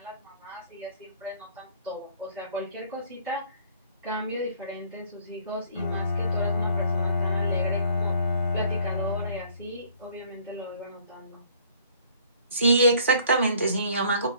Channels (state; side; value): inverted; both; correlation -0.57